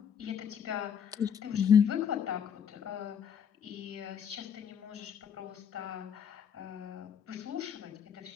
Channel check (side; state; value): right; quieter; 7.9 dB